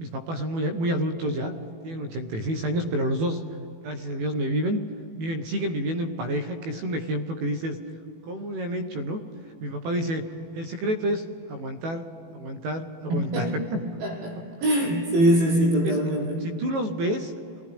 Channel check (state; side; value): late; left; 18 ms